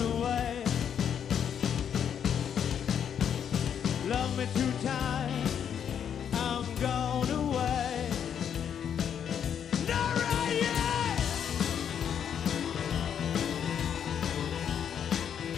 away. Love me two times, I'm gone away. Not right yet.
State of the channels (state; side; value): quieter; right; 8.5 dB